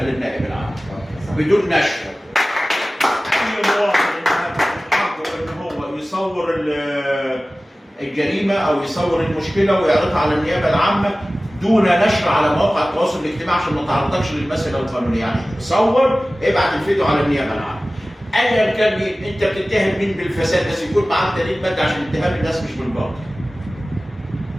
للنائب العام بدون نشر. اي مواطن حقه ان هو يصور الجريمه او يصور المشكله ويعرضها على النيابه العامه دون نشر على مواقع التواصل الاجتماعي عشان ما تعرضكش للمساله القانونيه. يعني صور ابعت الفيديو على النيابه العامه. ايا كان مين انت بتتهم مين بالفساد، بس يكون معاك دليل مادي عشان اتهام الناس مش بالباطل.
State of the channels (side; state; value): both; normal; correlation 0.97